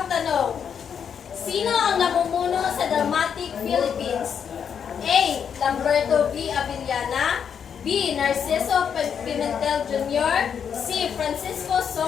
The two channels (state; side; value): quieter; right; 7.6 dB